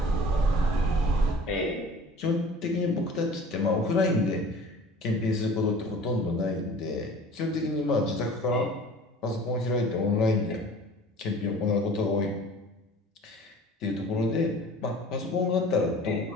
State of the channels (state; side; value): normal; both; correlation 0.45